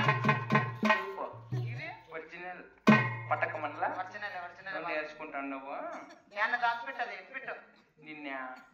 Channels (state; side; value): identical; both; correlation 1.00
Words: ఒరిజినల్ పట్టకమన్లా నేర్చుకుంటాను. నువ్వు నేను దాచిపెట్టది ఎత్తిపెట్టు. నిన్న